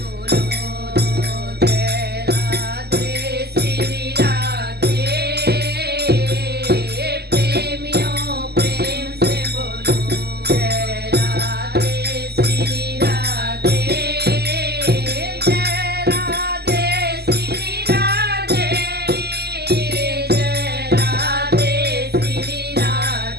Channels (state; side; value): late; left; 0.47 ms